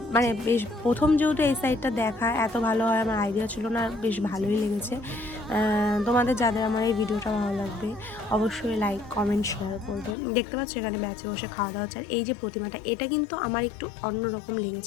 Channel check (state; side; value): drops out; right; at 10.2 s